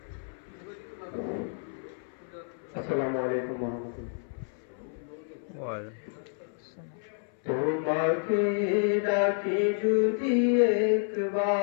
আসসালামু আলাইকুম ওয়া রাহমাতুল্লাহ। তোমাকে ডাকি যদি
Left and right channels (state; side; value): silent; right; 58 dB below the other